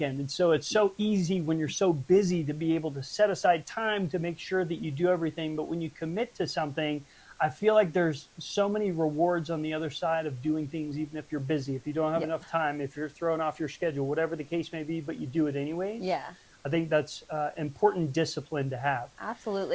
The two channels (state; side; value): identical; both; correlation 1.00